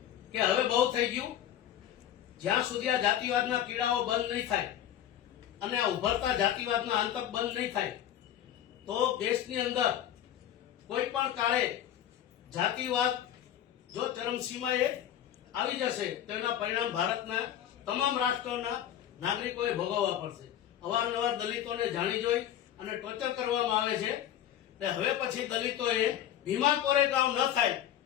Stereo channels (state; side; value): quieter; right; 11.1 dB